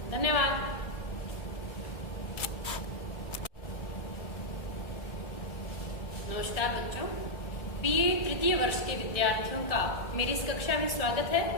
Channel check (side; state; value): right; late; 1.6 ms